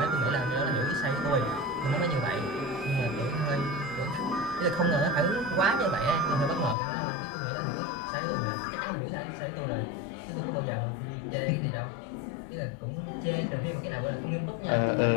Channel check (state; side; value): drops out; right; at 6.8 s